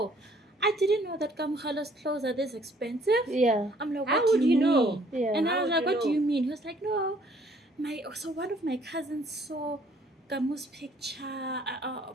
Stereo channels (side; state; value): both; normal; correlation 0.61